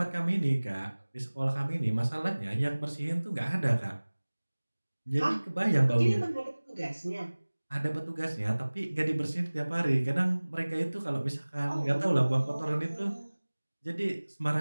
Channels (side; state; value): both; inverted; correlation -1.00